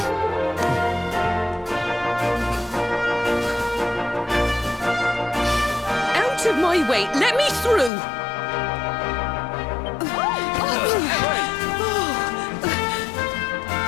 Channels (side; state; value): right; drops out; at 7.9 s